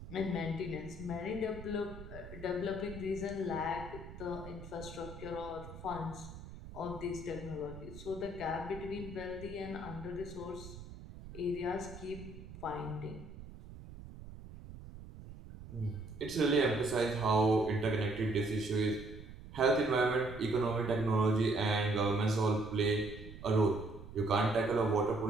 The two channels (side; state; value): right; noise; rumble, 14 dB below the sound